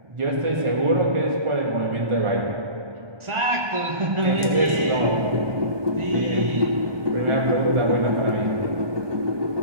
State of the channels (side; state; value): left; late; 1.2 ms